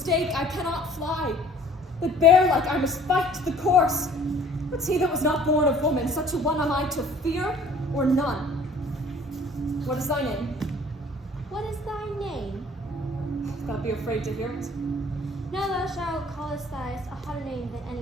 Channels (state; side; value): normal; both; correlation 0.52